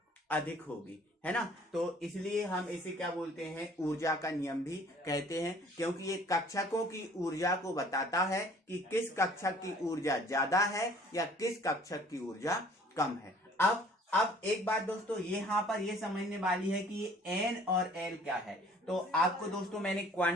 अधिक होगी, है ना। तो इसलिए हम इसे क्या बोलते हैं, ऊर्जा का नियम भी कहते हैं, क्योंकि ये कक्षकों की ऊर्जा को बताता है कि किस कक्षक की ऊर्जा ज्यादा है या किस कक्षक की ऊर्जा कम है। अब एक बात दोस्तों यहाँ पर ये समझने वाली है कि ये N और L क्या है। तो आपको दोस्तों मैंने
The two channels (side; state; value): both; normal; correlation 0.54